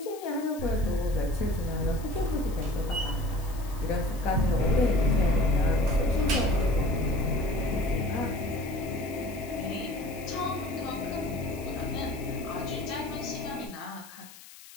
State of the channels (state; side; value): noise; left; hiss, 19 dB below the sound